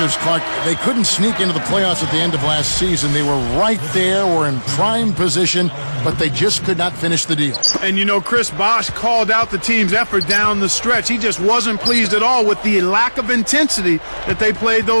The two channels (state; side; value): inverted; both; correlation -1.00